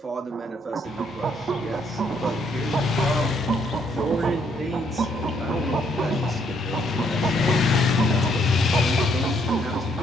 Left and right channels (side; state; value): both; normal; correlation 0.70